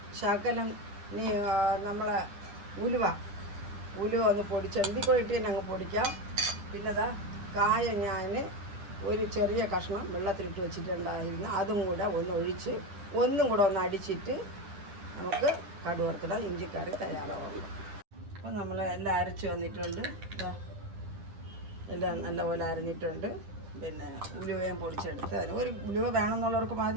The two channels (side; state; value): left; late; 10 ms